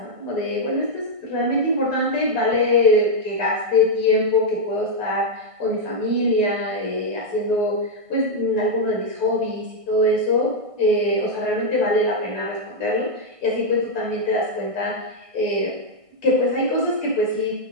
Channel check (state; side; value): late; left; 1.5 ms